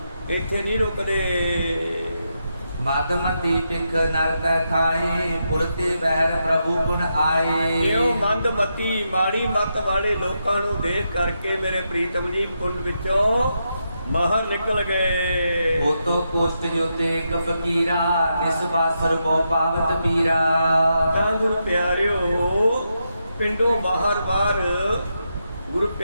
ਇੱਥੇ ਨਹੀਂ ਰੁਕਦੇ। ਮਦਮਤੀ ਪਿਖ ਨਰਤੈ ਖਾਏ, ਪੁਰਤੇ ਬਹਿਰ ਪ੍ਰਭੂ ਗੁਣ ਆਏ। ਇਹੋ ਮੰਦਮਤੀ ਮਾੜੀ ਮੱਤ ਵਾਲੇ ਲੋਕਾਂ ਨੂੰ ਦੇਖ ਕਰਕੇ ਮੇਰੇ ਪ੍ਰੀਤਮ ਜੀ ਕੁੰਡ ਵਿੱਚੋਂ ਬਾਹਰ ਨਿਕਲ ਗਏ। ਉਤੋਂ ਕੋਸ਼ਟ ਜੋਤੇ ਇੱਕ ਫਕੀਰਾ, ਨਿਸਬਾਸਰ ਕੋ ਪਾਵਤ ਪੀਰਾ। ਤਾਂ ਗੁਰੂ ਪਿਆਰਿਓ ਪਿੰਡੋਂ ਬਾਹਰ ਗੁਰੂ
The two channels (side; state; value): both; inverted; correlation -0.84